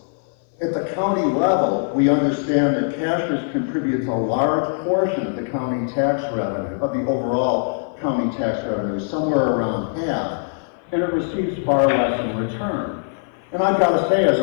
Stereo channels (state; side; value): silent; right; 56 dB below the other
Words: At the county level, we understand that Cashiers contributes a large portion of the county tax revenue, of the overall county tax revenue, somewhere around half, and it receives far less in return. And I've got to say, as